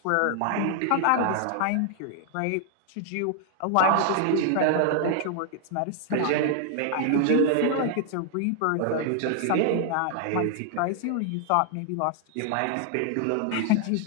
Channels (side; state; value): both; different; correlation 0.00